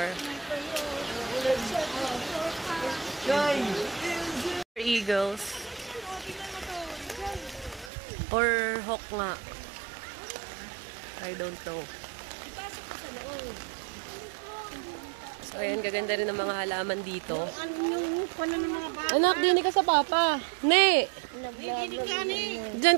Eagles. Or hawk nga. I don't know. So, ayan, gaganda rin ang mga halaman dito. Anak, dinig ka sa papa. Ne! Diyan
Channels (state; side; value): drops out; left; at 7.9 s